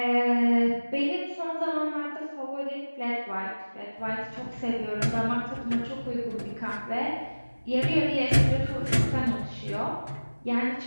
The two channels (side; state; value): both; inverted; correlation -1.00